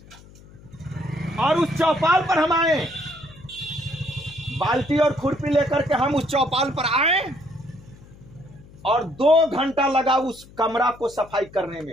और उस चौपाल पर हम आए। बाल्टी और खुरपी लेकर के हम उस चौपाल पर आए और 2 घंटा लगा उस कमरा को सफाई करने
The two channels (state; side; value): noise; left; hum, 22 dB below the sound